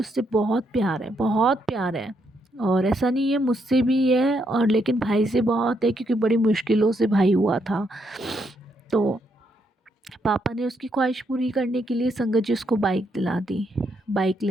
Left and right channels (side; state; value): both; normal; correlation 0.77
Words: बहुत प्यार है, बहुत प्यार है। और ऐसा नहीं है, मुझसे भी है और लेकिन भाई से बहुत है क्योंकि बड़ी मुश्किलों से भाई हुआ था। तो पापा ने उसकी ख्वाहिश पूरी करने के लिए संगत जी उसको बाइक दिला दी। बाइक